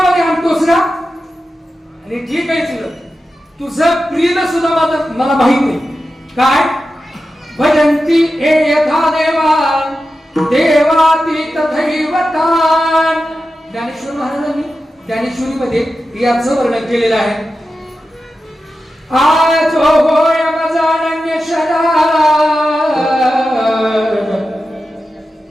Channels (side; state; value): both; normal; correlation 0.92